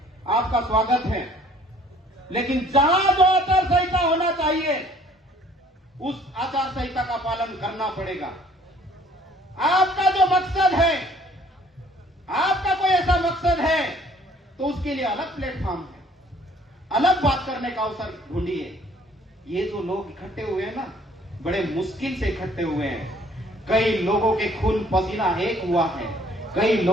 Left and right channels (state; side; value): normal; both; correlation 0.58